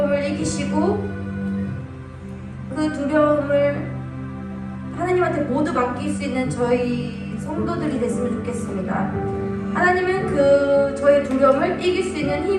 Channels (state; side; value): identical; both; correlation 1.00